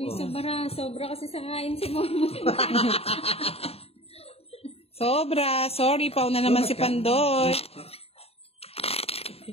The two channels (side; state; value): right; late; 0.29 ms